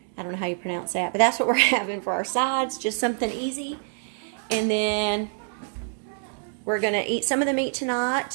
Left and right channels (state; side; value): silent; left; digital silence